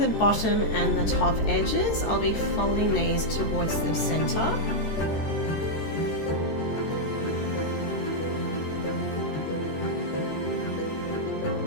bottom and the top edges, I'll be folding these towards the centre.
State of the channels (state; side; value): late; right; 13 ms